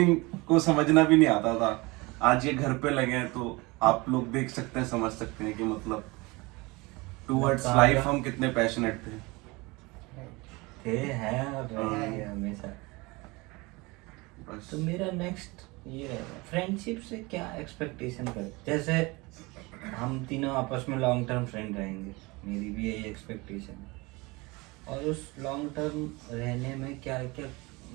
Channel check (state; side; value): quieter; left; 24.4 dB